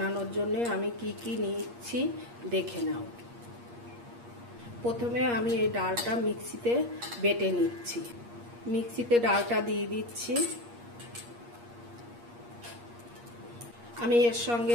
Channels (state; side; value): late; left; 8.5 ms